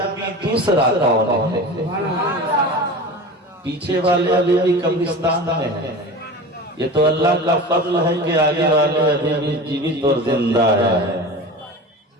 دوسرا کون ہے؟ پیچھے والے ابھی بھی قبرستان میں ہیں، یہ تو اللہ کا فضل ہے کہ آگے والے ابھی بھی جیوت اور زندہ ہے۔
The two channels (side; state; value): both; normal; correlation 0.33